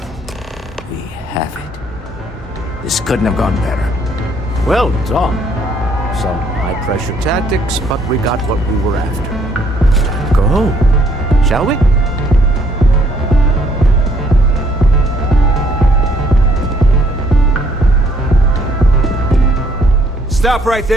We have it. This couldn't have gone better. Well done. Some high-pressure tactics, but we got what we were after. Time to go home, shall we? Stop right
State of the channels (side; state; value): both; normal; correlation 0.65